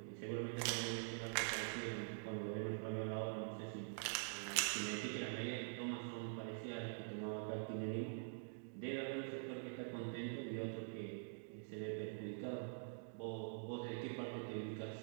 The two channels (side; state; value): left; silent; digital silence